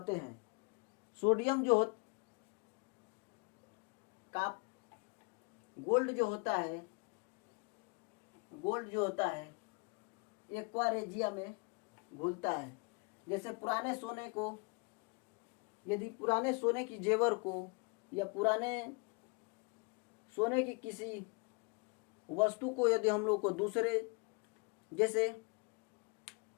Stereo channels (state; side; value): quieter; right; 32.8 dB